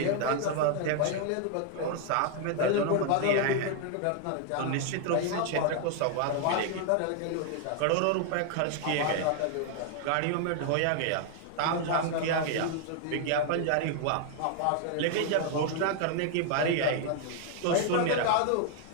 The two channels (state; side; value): different; both; correlation 0.00